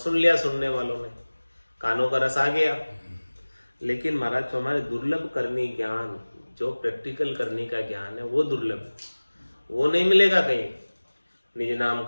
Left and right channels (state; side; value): inverted; both; correlation -1.00